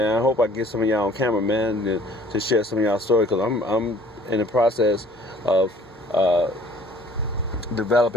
I hope I get some of y'all on camera, man, to share some of y'all stories, because I'm in the process of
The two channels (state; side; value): normal; both; correlation 0.53